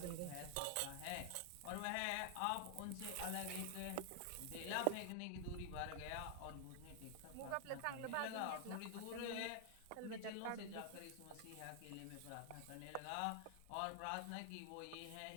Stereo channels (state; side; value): different; both; correlation 0.00